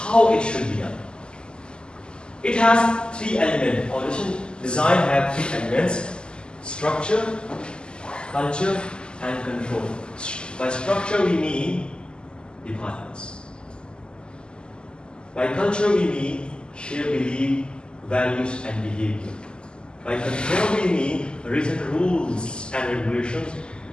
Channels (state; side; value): late; right; 0.048 ms